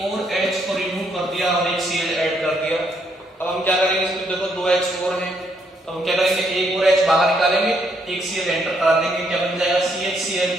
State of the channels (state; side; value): normal; both; correlation 0.73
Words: और H को रिमूव कर दिया और एक Cl ऐड कर दिया। अब हम क्या करेंगे, इसमें देखो दो H और हैं, तो हम क्या करेंगे, एक और H बाहर निकालेंगे, एक Cl एंटर करा देंगे, क्या बन जाएगा